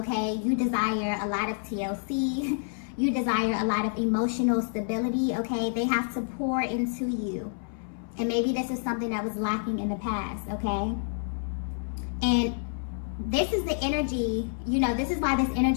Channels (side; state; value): right; silent; 58 dB below the other